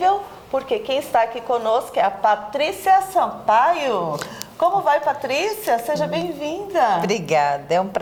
porque quem está aqui conosco é a Patrícia Sampaio. Como vai, Patrícia? Seja bem-vinda. Obrigada, é um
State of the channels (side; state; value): both; identical; correlation 1.00